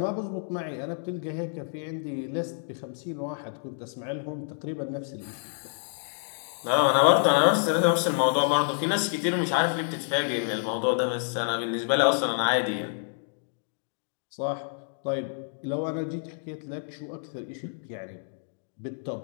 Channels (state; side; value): silent; right; digital silence